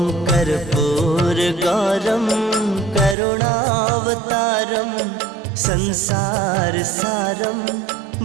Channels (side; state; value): left; drops out; at 3.2 s